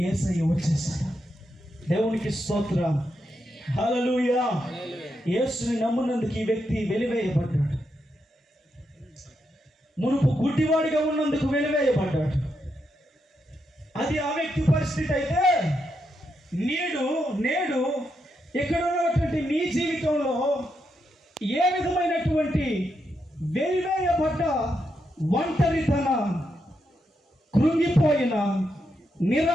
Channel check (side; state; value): both; normal; correlation 0.83